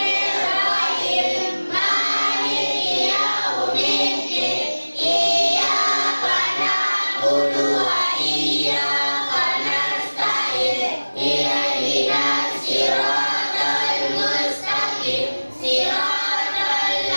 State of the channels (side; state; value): both; inverted; correlation -1.00